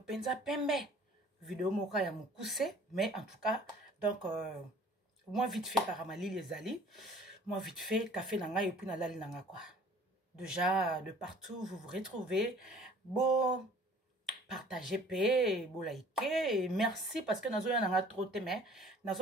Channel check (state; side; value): normal; both; correlation 0.51